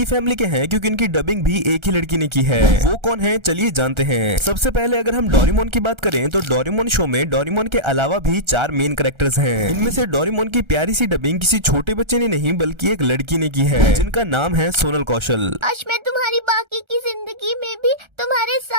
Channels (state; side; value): late; left; 1.3 ms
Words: फैमिली के हैं क्योंकि इनकी डबिंग भी एक ही लड़की ने की है। वो कौन है चलिए जानते हैं। सबसे पहले अगर हम डोरेमोन की बात करें तो डोरेमोन शो में डोरेमोन के अलावा भी 4 मेन कैरेक्टर्स हैं। इनमें से डोरेमोन की प्यारी सी डबिंग किसी छोटे बच्चे ने नहीं बल्कि एक लड़की ने की है जिनका नाम है सोनल कौशल। आज मैं तुम्हारी बाकी की जिंदगी में भी तुम्हारे